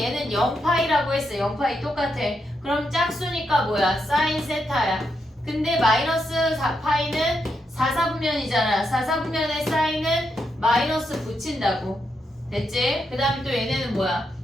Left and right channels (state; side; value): normal; both; correlation 0.82